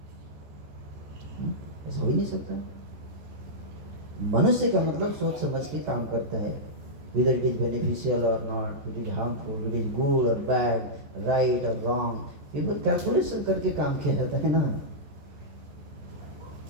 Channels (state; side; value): late; left; 14 ms